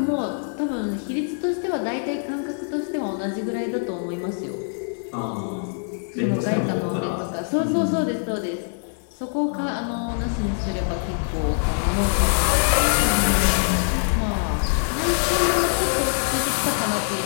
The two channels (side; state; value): right; silent; digital silence